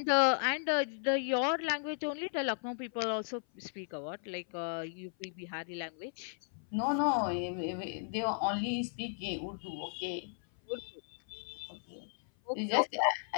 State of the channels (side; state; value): right; silent; 54 dB below the other